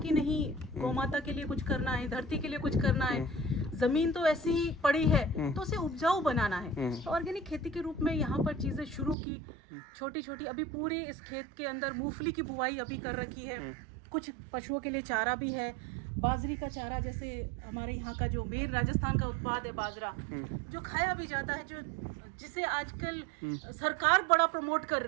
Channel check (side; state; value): left; drops out; at 9.2 s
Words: नहीं, गौमाता के लिए कुछ करना है, धरती के लिए कुछ करना है, जमीन तो ऐसी ही पड़ी है तो उसे उपजाऊ बनाना है। तो ऑर्गेनिक खेती के रूप में यहाँ पर चीजें शुरू की, छोटी छोटी। अभी पूरे इस खेत के अंदर मूंगफली की बुवाई अभी कर रखी है, कुछ पशुओं के लिए चारा भी है, बाजरी का चारा, जैसे हमारे यहाँ का जो मेन राजस्थान का उत्पाद है बाजरा, जो खाया भी जाता है, जो जिसे आजकल सरकार बड़ा प्रमोट कर